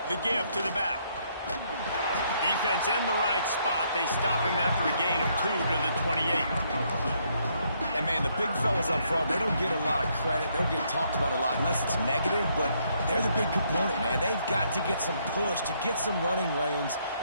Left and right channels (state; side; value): inverted; both; correlation -0.72